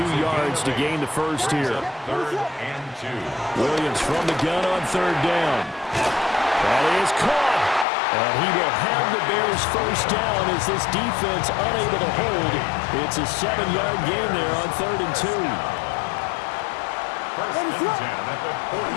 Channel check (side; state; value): right; drops out; at 7.9 s